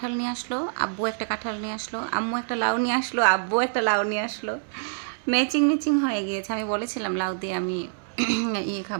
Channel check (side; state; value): left; silent; digital silence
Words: নিয়ে আসলো, আব্বু একটা কাঁঠাল নিয়ে আসলো, আম্মু একটা লাউ নিয়ে আসলো, আব্বু একটা লাউ নিয়ে আসলো। ম্যাচিং হয়ে গিয়েছে। আমি বলেছিলাম লাউ দিয়ে আমি